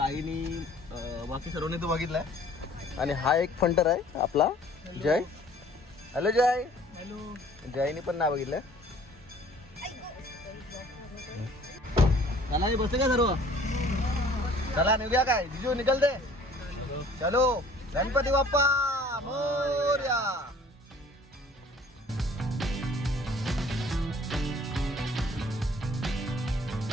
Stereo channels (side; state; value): both; normal; correlation 0.53